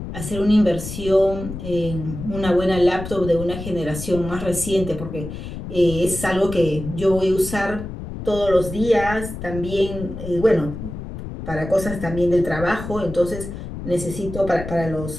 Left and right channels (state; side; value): noise; left; rumble, 9 dB below the sound